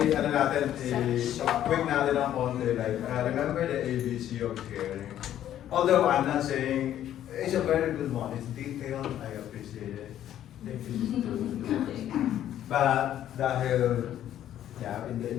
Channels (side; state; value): right; quieter; 11.5 dB